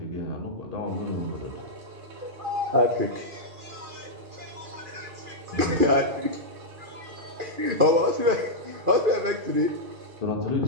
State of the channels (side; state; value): left; late; 2.4 ms